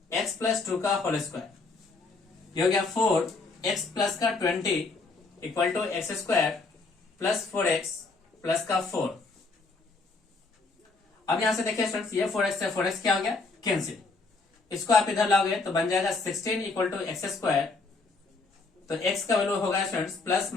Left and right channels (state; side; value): quieter; right; 3.8 dB